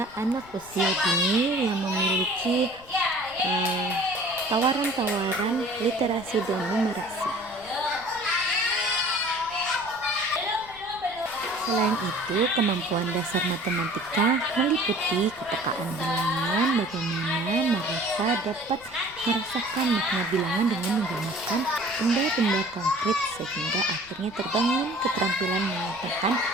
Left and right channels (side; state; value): left; noise; rumble, 23 dB below the sound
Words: anak usia dini yang memiliki tawaran-tawaran literasi dan numerasi. Selain itu, kemampuan dasar matematika meliputi kepekaan bilangan, bagaimana mereka dapat merasakan makna bilangan dengan menggunakan benda-benda konkret sehingga akhirnya terbangun keterampilan menyatakan